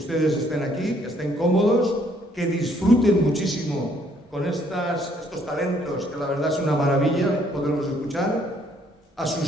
estén aquí, que estén cómodos, que disfruten muchísimo con estos talentos, que la verdad es una maravilla poderlos escuchar, a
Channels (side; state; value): both; normal; correlation 0.66